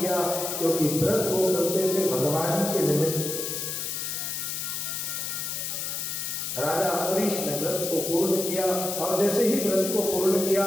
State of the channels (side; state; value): left; noise; hiss, 3 dB below the sound